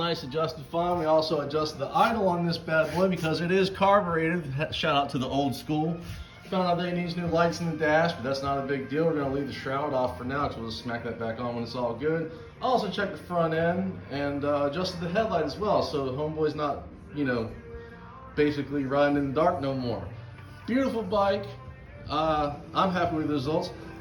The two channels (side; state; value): both; identical; correlation 1.00